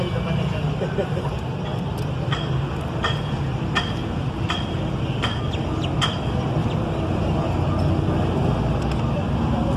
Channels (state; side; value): identical; both; correlation 1.00